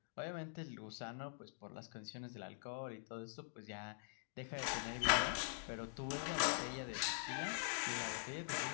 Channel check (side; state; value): right; silent; digital silence